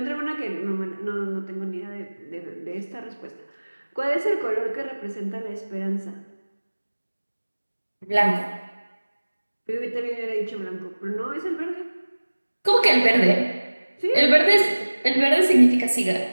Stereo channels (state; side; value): inverted; both; correlation -1.00